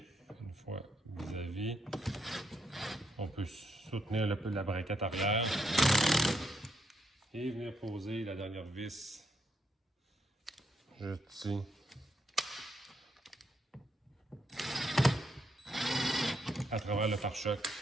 une fois vis-à-vis. On peut soutenir la braquette arrière et venir poser la dernière vis juste ici. À travers le pare-choc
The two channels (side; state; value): both; normal; correlation 0.77